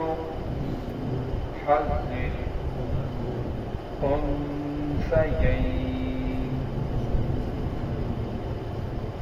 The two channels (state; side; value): identical; both; correlation 1.00